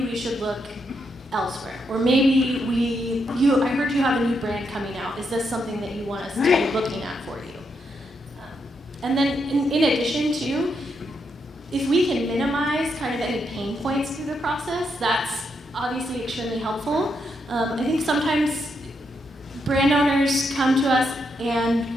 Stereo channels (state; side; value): normal; both; correlation 0.80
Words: we should look elsewhere. Or maybe I heard you have a new brand coming out. Is this something that you want us to be looking at for you? And then in addition to, if we can minimize kind of any pain points through the process, that's obviously extremely helpful. I think sometimes brand owners come to us and